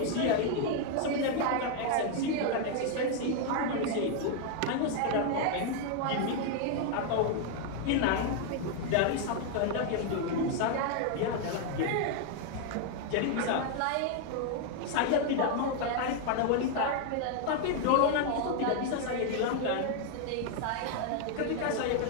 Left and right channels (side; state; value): both; different; correlation 0.00